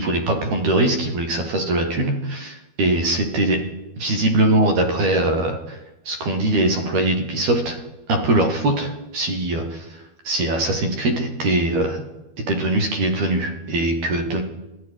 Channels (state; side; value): late; left; 12 ms